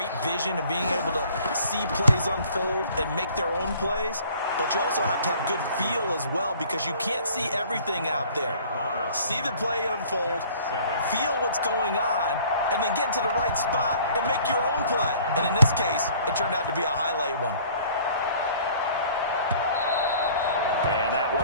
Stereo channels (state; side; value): inverted; both; correlation -0.53